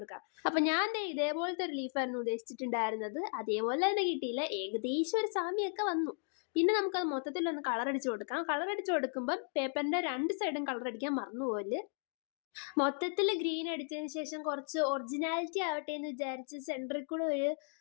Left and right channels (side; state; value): right; silent; 54 dB below the other